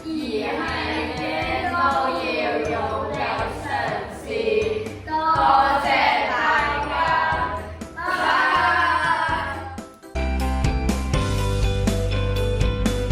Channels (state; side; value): identical; both; correlation 1.00